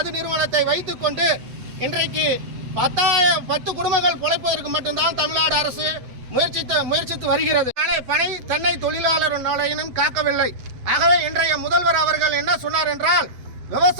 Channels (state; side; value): late; left; 7.9 ms